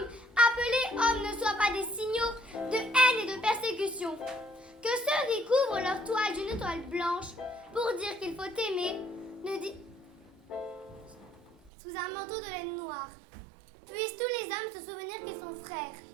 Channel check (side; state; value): left; drops out; at 11.7 s